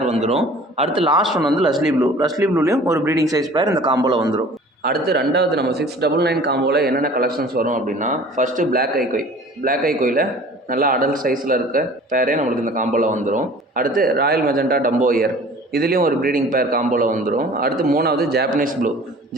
வந்துடும். அடுத்து லாஸ்ட் ஒன் வந்து லஸ்லி ப்ளூ. லஸ்லி ப்ளூலேயும் ஒரு ப்ரீடிங் சைஸ் பேர் இந்த காம்போவில் வந்துடும். அடுத்து ரெண்டாவது நம்ம 699 காம்போவில் என்னென்ன கலெக்ஷன்ஸ் வரும் அப்படின்னா, ஃபஸ்ட்டு பிளாக் ஐகோய். பிளாக் ஐகோயில் நல்லா அடல்ட் சைஸில் இருக்க பேரே நம்மளுக்கு இந்த காம்போவில் வந்துடும். அடுத்து ராயல் மெஜெண்டா டம்போ இயர். இதுலேயும் ஒரு ப்ரீடிங் பேர் காம்போவில் வந்துடும். அடுத்து மூணாவது ஜாப்பனீஸ் ப்ளூ.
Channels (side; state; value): both; normal; correlation 0.46